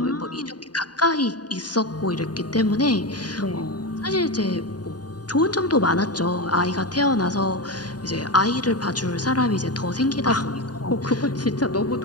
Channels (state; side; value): late; right; 0.69 ms